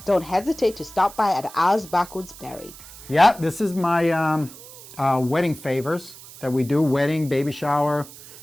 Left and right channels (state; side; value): noise; right; hiss, 18 dB below the sound